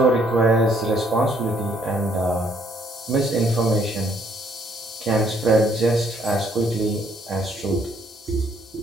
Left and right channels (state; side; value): normal; both; correlation 0.66